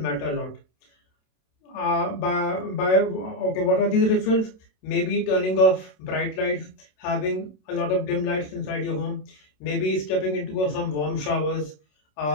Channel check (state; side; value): late; right; 27 ms